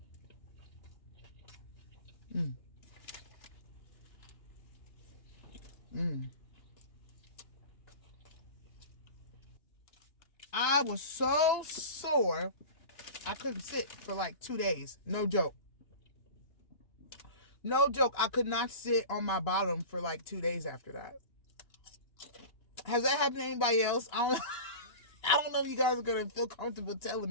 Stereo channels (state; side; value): late; right; 2.8 ms